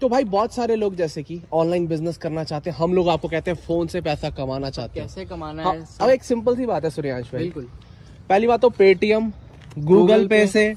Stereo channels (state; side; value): identical; both; correlation 1.00